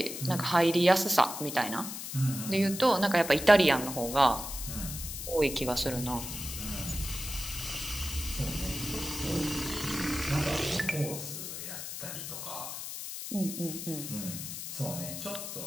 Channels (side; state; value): left; noise; hiss, 7 dB below the sound